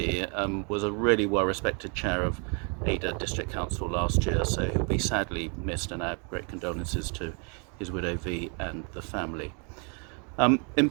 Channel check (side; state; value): left; quieter; 37.1 dB